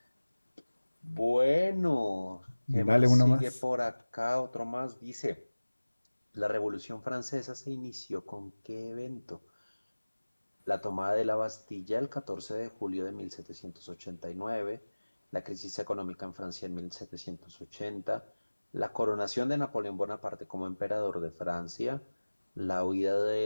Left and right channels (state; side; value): inverted; both; correlation -1.00